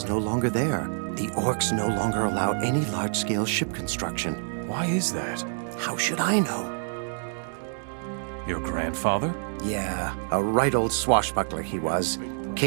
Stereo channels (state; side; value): silent; left; digital silence